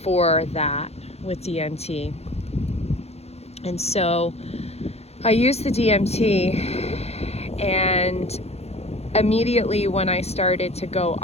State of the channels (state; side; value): late; right; 0.30 ms